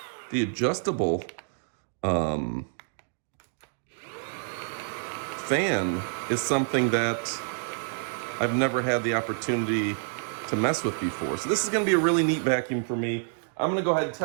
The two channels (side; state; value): left; silent; digital silence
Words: The adjustable fan is something that I've never had the opportunity to mess with before. So this is going to be a really neat vacuum for me. I'm going to go ahead and